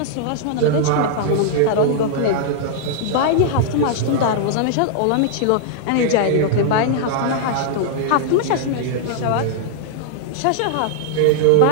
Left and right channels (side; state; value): both; different; correlation -0.01